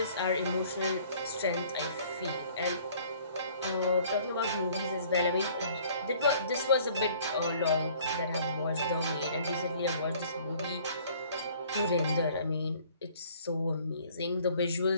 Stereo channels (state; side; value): inverted; both; correlation -0.55